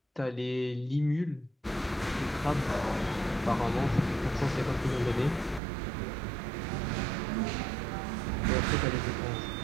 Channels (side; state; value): left; drops out; at 5.6 s